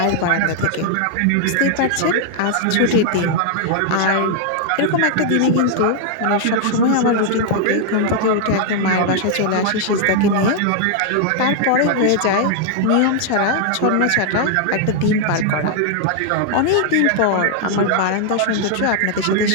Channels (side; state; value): both; different; correlation 0.00